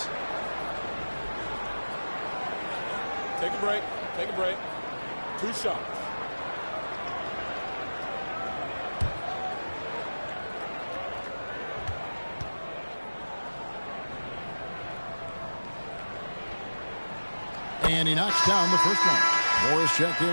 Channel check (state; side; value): inverted; both; correlation -1.00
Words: Take a break. Take a break. 2 shots. And he knocks down the first one. Morris checked